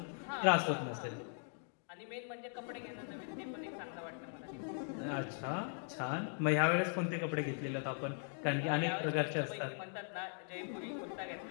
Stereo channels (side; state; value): right; silent; 51 dB below the other